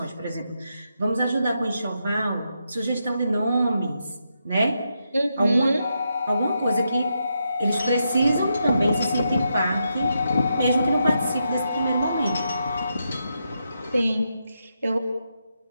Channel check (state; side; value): inverted; both; correlation -0.83